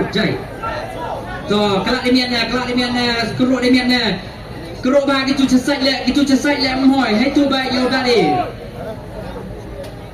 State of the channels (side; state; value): both; identical; correlation 1.00